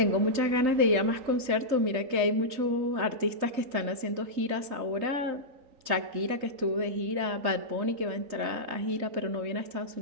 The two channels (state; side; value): late; left; 3.9 ms